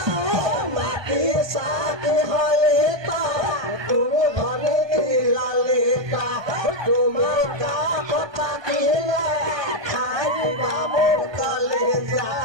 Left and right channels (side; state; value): left; late; 1.2 ms